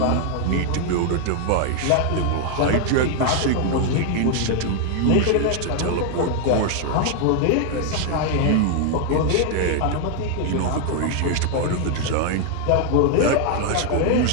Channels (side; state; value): both; different; correlation 0.00